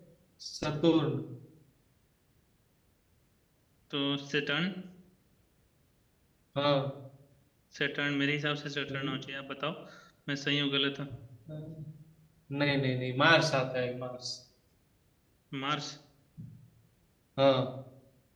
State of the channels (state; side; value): identical; both; correlation 1.00